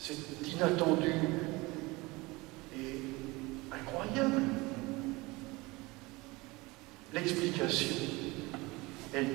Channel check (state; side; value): quieter; left; 23.0 dB